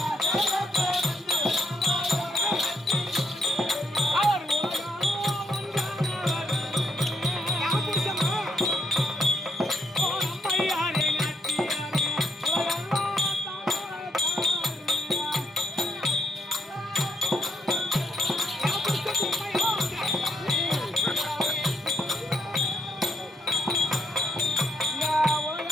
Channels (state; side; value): normal; both; correlation 0.76